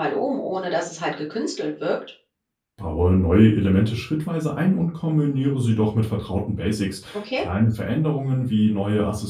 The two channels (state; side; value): identical; both; correlation 1.00